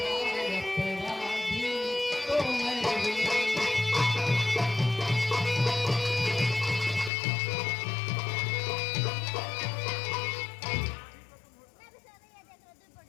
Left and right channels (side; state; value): right; drops out; at 7.1 s